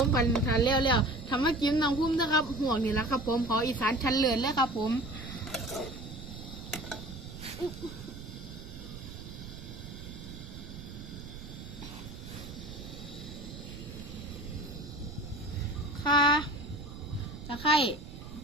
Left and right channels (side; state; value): right; noise; rumble, 12 dB below the sound